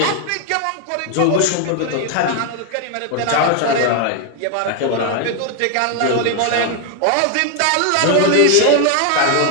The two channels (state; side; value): different; both; correlation 0.01